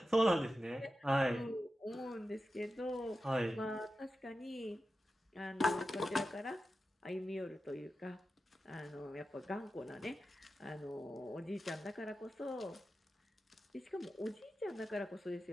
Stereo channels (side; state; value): both; normal; correlation 0.92